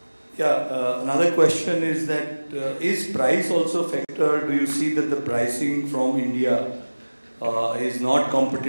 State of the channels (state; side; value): inverted; both; correlation -1.00